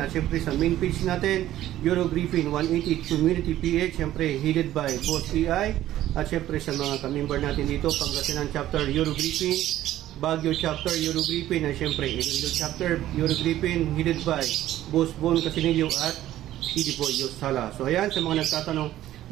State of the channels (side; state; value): left; quieter; 13.5 dB